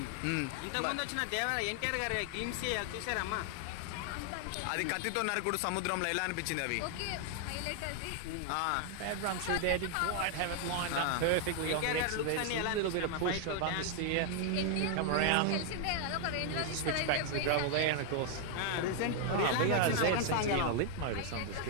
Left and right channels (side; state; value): both; different; correlation 0.00